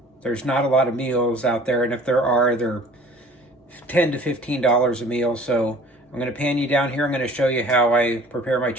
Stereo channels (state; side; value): normal; both; correlation 0.48